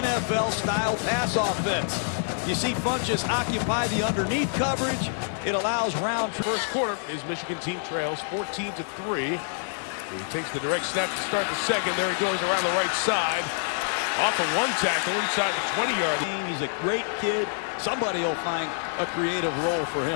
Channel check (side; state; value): right; silent; digital silence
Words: NFL-style pass offense. You see Funches occupy the underneath coverage. It allows Round. First quarter, his Michigan team trails 14-3. He takes the direct snap to start the second. There he goes around the right side. Off of one tackle inside the 20-yard. He's a great kid. Somebody will find a creative role for